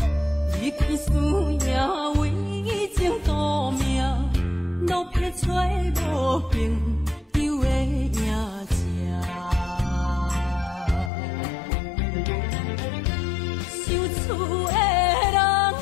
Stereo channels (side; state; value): right; drops out; at 11.1 s